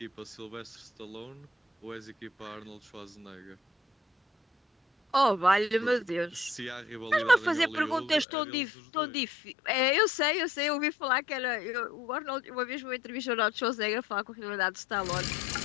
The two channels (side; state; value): right; drops out; at 8.2 s